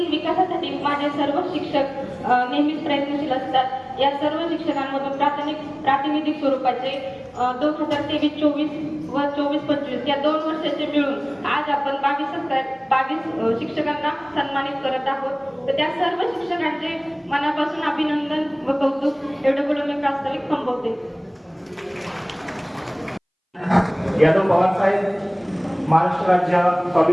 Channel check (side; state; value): both; identical; correlation 1.00